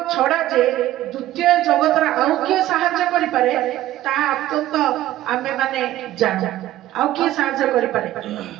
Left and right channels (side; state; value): left; quieter; 14.4 dB